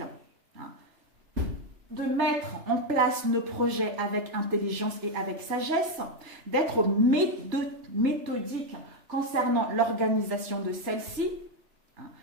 hein, de mettre en place nos projets avec intelligence et avec sagesse, d'être méthodique concernant l'organisation de celle-ci, hein,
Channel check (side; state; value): left; late; 3.3 ms